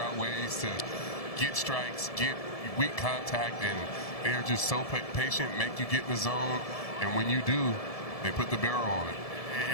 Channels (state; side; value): late; right; 1.7 ms